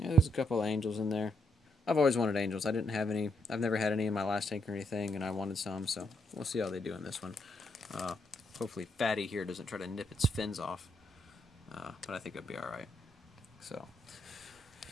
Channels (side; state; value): both; normal; correlation 0.77